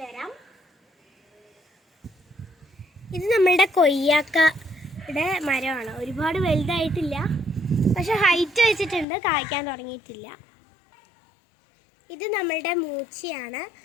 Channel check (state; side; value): drops out; right; at 9.1 s